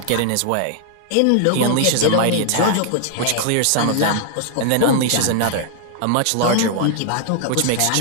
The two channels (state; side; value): different; both; correlation 0.00